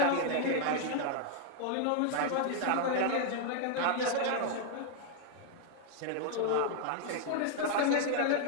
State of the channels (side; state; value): both; different; correlation 0.00